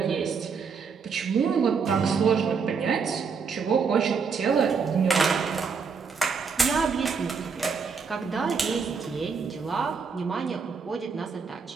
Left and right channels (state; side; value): quieter; left; 5.6 dB